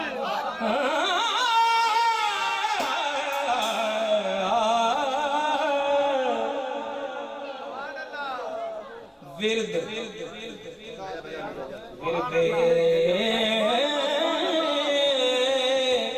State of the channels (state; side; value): identical; both; correlation 1.00